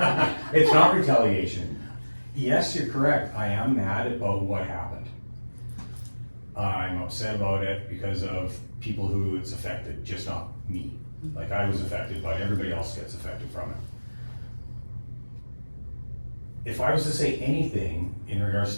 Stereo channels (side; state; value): both; inverted; correlation -1.00